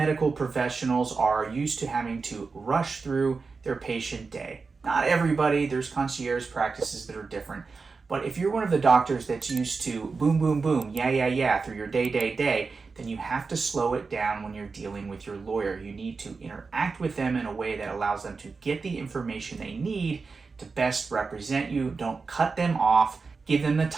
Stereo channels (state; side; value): quieter; left; 4.5 dB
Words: professionals are used to having to rush through their patient day. Not everybody, there's concierge practices that are different. But if you're one of the doctors that's used to boom, boom, boom, yeah, through your day, then you have to slow it down when you're dealing with your lawyer. You need to interact with them in a way that allows them to get the information they need to best represent you. Don't cut them off. Give them the